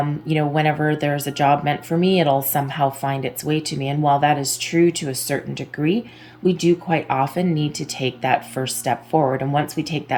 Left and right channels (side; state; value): both; identical; correlation 1.00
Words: whenever there's a job meant for me, it'll somehow find its way to me. And while that is true to a certain degree, we do quite often need to take that first step forward. And once we take